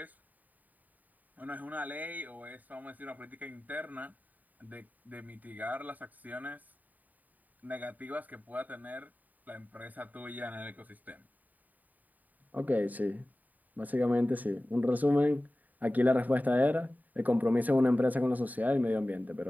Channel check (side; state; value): left; late; 0.081 ms